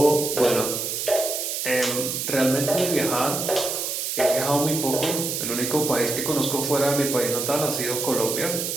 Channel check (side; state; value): right; noise; hiss, 2 dB below the sound